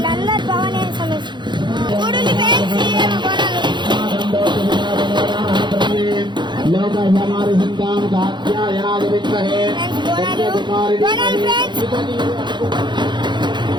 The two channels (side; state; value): left; late; 0.22 ms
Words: భవానీ సమస్య చూడండి ఫ్రెండ్స్